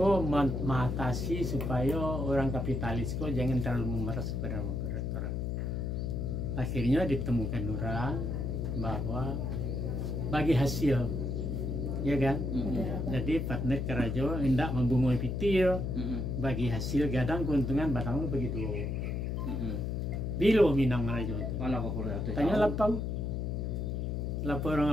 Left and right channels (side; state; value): left; noise; hum, 1 dB below the sound